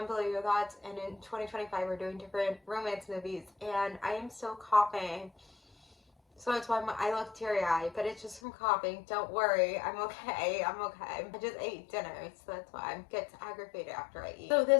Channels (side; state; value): right; drops out; at 8.4 s